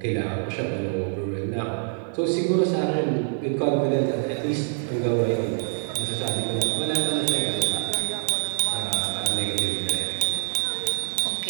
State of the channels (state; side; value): silent; left; 59 dB below the other